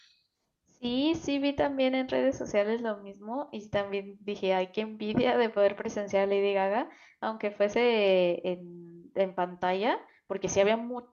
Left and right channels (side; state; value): both; identical; correlation 1.00